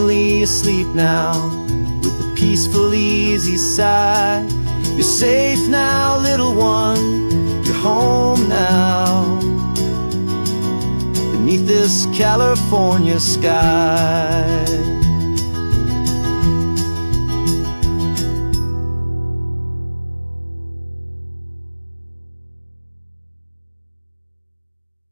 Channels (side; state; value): both; inverted; correlation -1.00